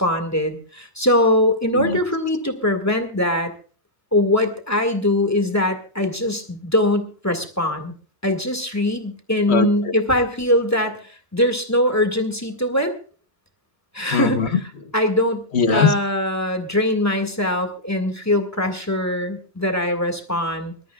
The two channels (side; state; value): both; normal; correlation -0.09